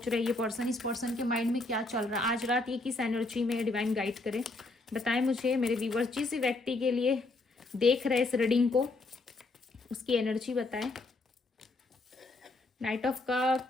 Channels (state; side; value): quieter; right; 3.1 dB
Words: रहे हैं ये पर्सन, इस पर्सन के माइंड में क्या चल रहा है आज रात, ये किस एनर्जी में डिवाइन गाइड करे। बताएं मुझे मेरे व्यूवर्स, जिस व्यक्ति के लिए देख रहे हैं इस रीडिंग को, उसकी एनर्जी बताएं। Night of